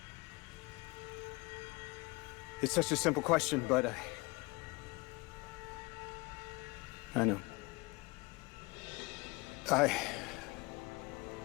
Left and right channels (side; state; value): right; quieter; 25.0 dB